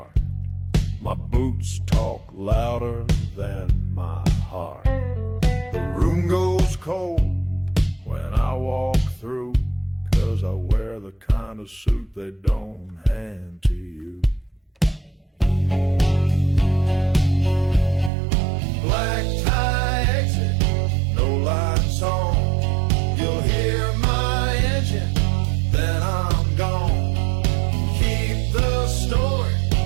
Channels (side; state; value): left; drops out; at 18.1 s